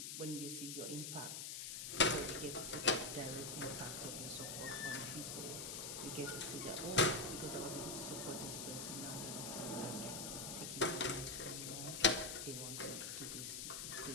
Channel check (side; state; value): left; noise; hiss, 5 dB below the sound